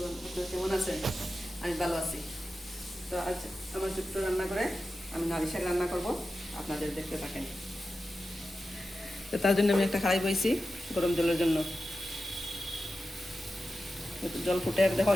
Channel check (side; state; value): both; normal; correlation 0.92